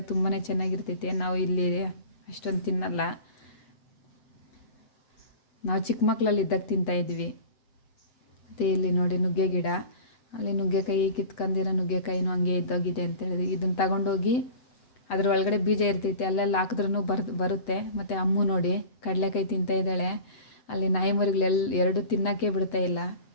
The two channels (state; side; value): late; right; 8.0 ms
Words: ತುಂಬಾ ಚೆನ್ನಾಗಿರ್ತೈತೆ. ನಾವು ಇಲ್ಲಿ ಅಷ್ಟೊಂದು ತಿನ್ನಲ್ಲ. ನಾವು ಚಿಕ್ಕ ಮಕ್ಕಳಲ್ಲಿ ಇದ್ದಾಗ ತಿಂತಾಯಿದ್ವಿ. ಮತ್ತು ಇಲ್ಲಿ ನೋಡಿ ನುಗ್ಗೆ ಗಿಡ. ಅಲ್ಲಿ ನುಗ್ಗೆಕಾಯಿ ಕಿತ್ಕೊಂಡಿರೋ ನುಗ್ಗೆಕಾಯಿನೂ ಹಂಗೆ ಇದ್ದೋಗಿದೆ ಅಂತ ಹೇಳಿದ್ವಿ. ಇದನ್ನು ತಗೊಂಡೋಗಿ ಅದ್ರ ಒಳಗಡೆ ಬೀಜ ಇರ್ತೈತೆ, ಅಲ್ಲೆಲ್ಲ ಹಾಕಿದ್ರೂ ಬರುತ್ತೆ. ಮತ್ತು ಅಮ್ಮು ನೋಡಿ ಕಡಲೆಕಾಯಿ ತಿಂತಾಯಿದ್ದಾಳೆ. ಅಲ್ಲಿ ನಾಯಿ ಮರಿಗಳೆಲ್ಲ 2 ತಿನ್ನೋಕ್ಕೆ ಬಿಡ್ತಾ ಇಲ್ಲ